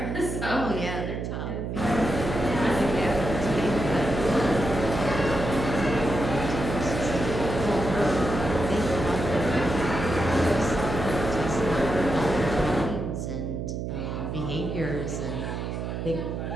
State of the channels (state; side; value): noise; right; hum, 4 dB below the sound